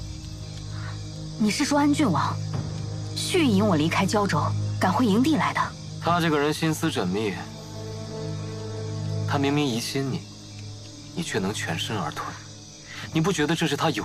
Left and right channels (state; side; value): identical; both; correlation 1.00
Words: 你是说安郡王蓄意引我离开胶州，赶回营地来的？他这个人心思缜密，他明明疑心你，你却能全身而退，你不觉得这是他